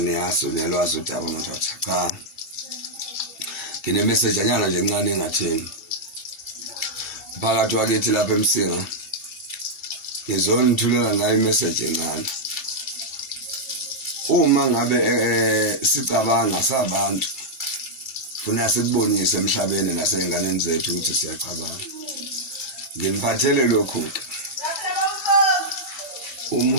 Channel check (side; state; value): right; late; 2.3 ms